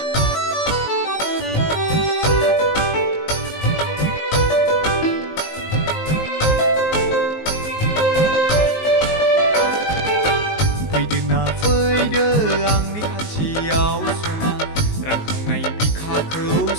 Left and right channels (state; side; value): late; right; 19 ms